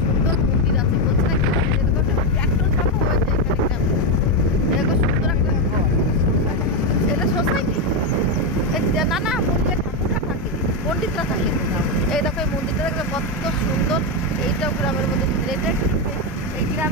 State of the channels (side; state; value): both; normal; correlation 0.07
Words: সুন্দর মন্দির আছে, বলছে না ট্র্যাক্টর চাপা হয়েছে এখানে গ্রামে। এরকম সুন্দর একটা ঘর, এটা সোসাইটি না, না মন্দিরে ঠাকুরটা থাকে, পণ্ডিতরা থাকে। এই দেখো এই মন্দিরটা দেখবে কত সুন্দর। এইটাও গ্রামের মধ্যে মন্দির। এটা এই